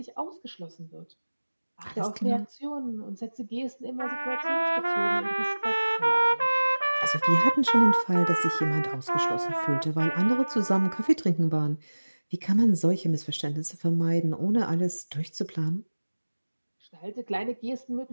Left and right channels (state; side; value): inverted; both; correlation -1.00